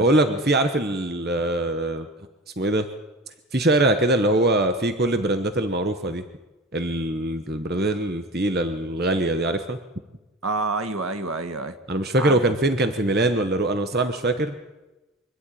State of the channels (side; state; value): both; normal; correlation 0.34